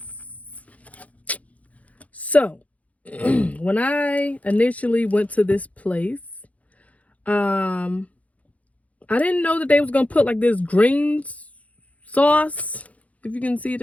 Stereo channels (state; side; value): late; right; 0.068 ms